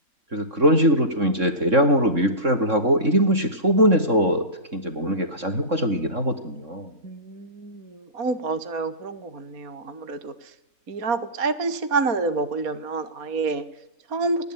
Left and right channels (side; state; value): left; late; 3.6 ms